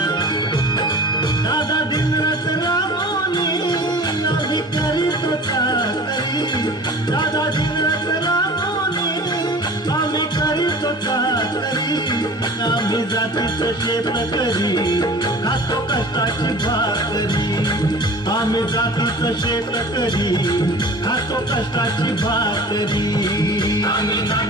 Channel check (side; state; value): both; normal; correlation 0.41